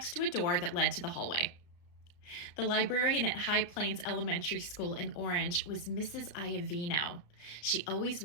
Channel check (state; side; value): late; right; 34 ms